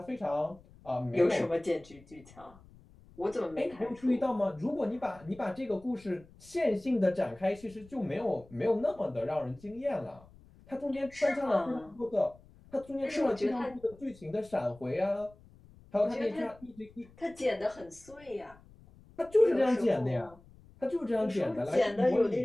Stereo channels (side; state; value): left; noise; rumble, 24 dB below the sound